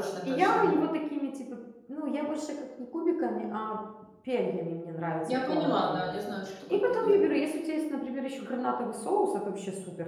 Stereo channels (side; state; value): both; identical; correlation 1.00